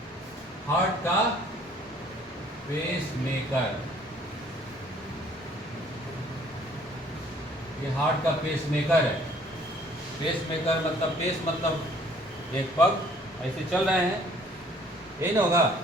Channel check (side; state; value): both; normal; correlation 0.58